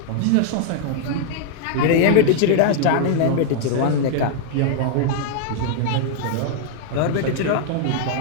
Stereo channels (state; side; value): different; both; correlation 0.00